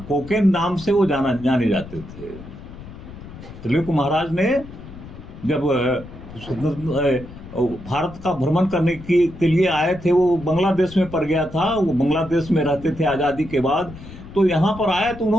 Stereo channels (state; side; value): noise; left; rumble, 15 dB below the sound